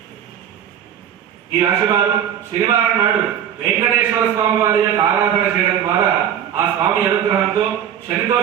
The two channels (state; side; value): quieter; left; 9.5 dB